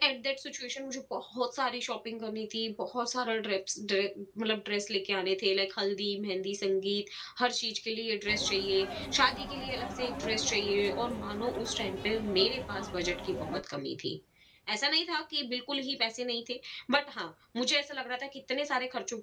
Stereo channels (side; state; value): both; identical; correlation 1.00